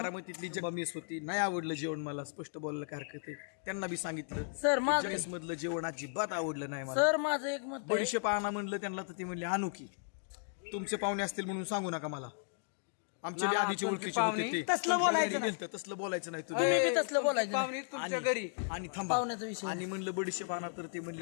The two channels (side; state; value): right; silent; digital silence